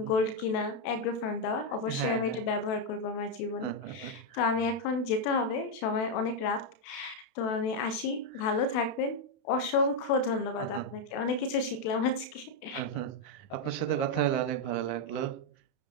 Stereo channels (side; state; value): right; late; 32 ms